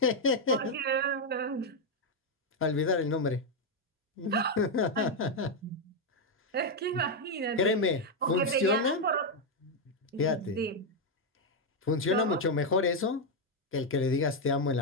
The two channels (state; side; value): normal; both; correlation 0.02